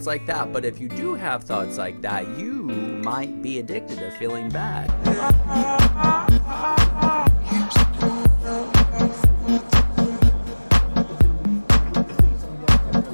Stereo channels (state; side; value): inverted; both; correlation -1.00